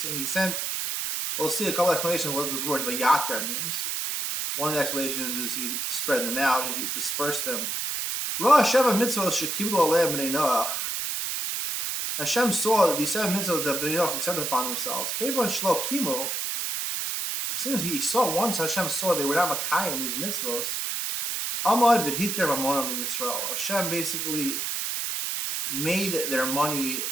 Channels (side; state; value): right; noise; hiss, 2 dB below the sound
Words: He sent. We'll see a couple explanations of what this word v'yatar means. One of the explanations is he spread them out, he dispersed them. Ra sheva mitzvos shekiblu aleim b'nei Noach. Hashem saw that these 7 mitzvahs that Bnei Noach accepted upon themselves. Kevan shlo kimu. Since he saw once, Hashem saw they were not makayim these mitzvahs. Amad v'hiter mamonan liyisrael. Hashem basically made their money